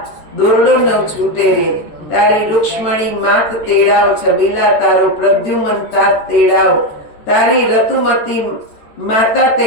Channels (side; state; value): right; late; 13 ms